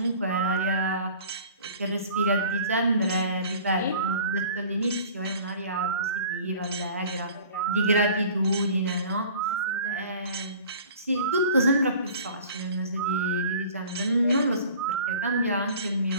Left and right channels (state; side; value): inverted; both; correlation -0.46